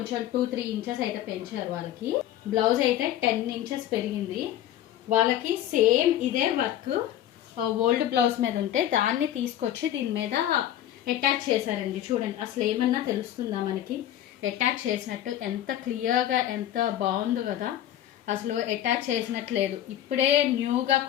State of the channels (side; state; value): right; quieter; 11.9 dB